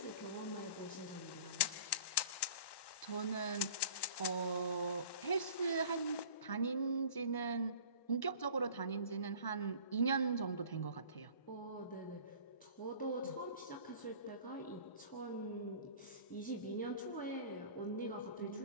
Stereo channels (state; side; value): late; right; 1.1 ms